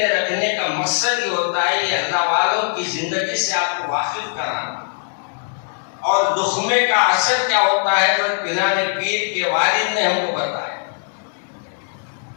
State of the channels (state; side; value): silent; right; 66 dB below the other